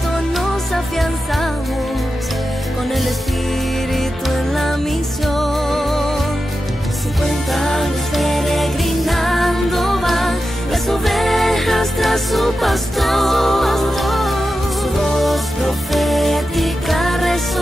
nos afianzamos con el Espíritu en la misión. 50 años peregrinando van las ovejas tras su pastor, su voz profética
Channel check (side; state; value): both; normal; correlation 0.91